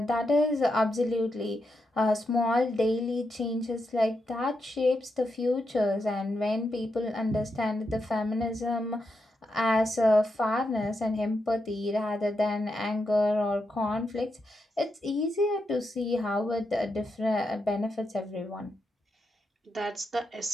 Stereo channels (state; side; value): normal; both; correlation 0.85